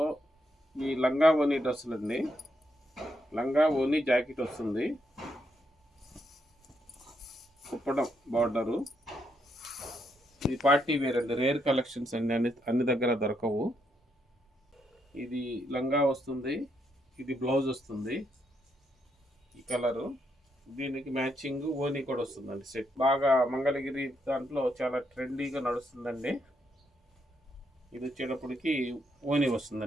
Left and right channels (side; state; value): both; normal; correlation 0.78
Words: ఈ లంగా ఓనీ డ్రెస్సులు అండి. లంగా ఓనీ జాకెట్ వస్తుంది, కుప్పడం బార్డరు. ఇది పార్టీ వేర్ అండి, రేర్ కలెక్షన్స్ అండి, అన్ని దగ్గర దొరకవు. ఇది లంగా వస్తుంది, ఇది బ్లౌజ్ వస్తుంది. ఈ కలరు దీనికి మ్యాచింగ్ ఓనీ కూడా వస్తుందండి. సెట్ బాగా మంగళగిరి దాంట్లో చాలా ట్రెండీగా నడుస్తుందండి. ఇది వచ్చేటప్పటికి ఓనీ